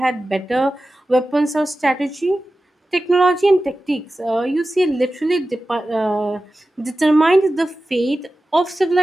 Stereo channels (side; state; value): both; normal; correlation 0.94